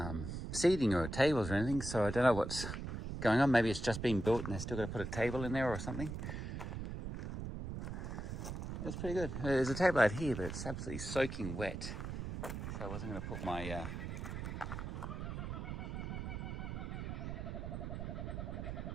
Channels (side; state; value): right; noise; rumble, 5 dB below the sound